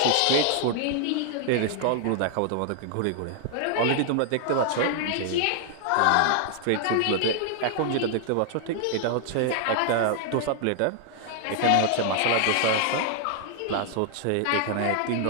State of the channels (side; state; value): both; different; correlation 0.00